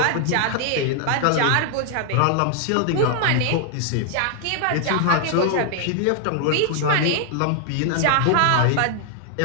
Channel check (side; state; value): both; different; correlation 0.00